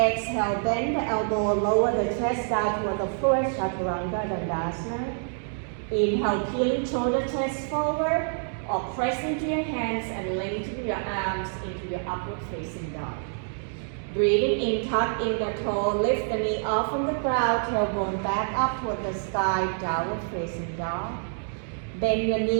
bend the elbow, lower the chest down toward the floor, Chaturanga Dandasana. Inhale, peeling shoulder chest forward, or press into your hands and lengthen your arms into your upward facing dog. Breathing in, tuck in the toe, lift the knee off from the ground, tailbone back up toward the sky, downward facing dog. Bend your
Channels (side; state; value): left; silent; 60 dB below the other